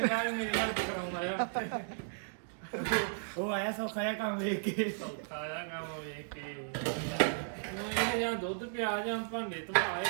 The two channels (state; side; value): silent; left; digital silence